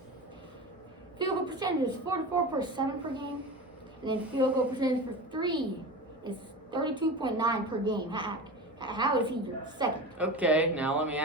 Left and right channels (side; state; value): both; normal; correlation 0.29